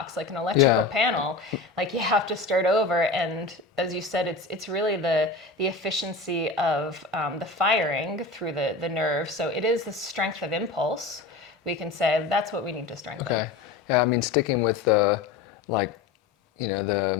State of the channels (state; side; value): quieter; right; 3.9 dB